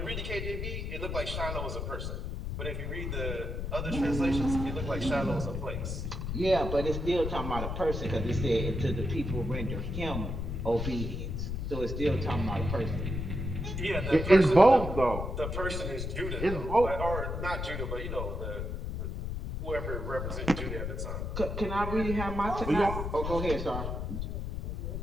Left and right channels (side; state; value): left; noise; rumble, 4 dB below the sound